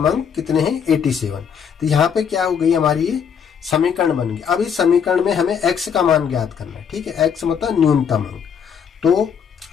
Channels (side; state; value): right; quieter; 7.3 dB